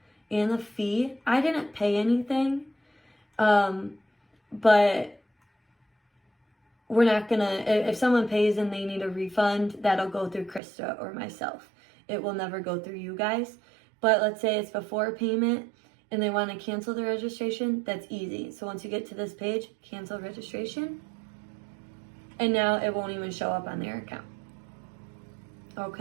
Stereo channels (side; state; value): left; drops out; at 10.6 s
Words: and the fee. I didn't pay anything, but we're not gonna, if someone pays and they need a refund, that'll go through Krista or myself. It will never go through you guys. But let's say it's before payment and they want to cancel the registration, that's easy. So once you get to this page, cancel registration, and now it won't even show up on their account.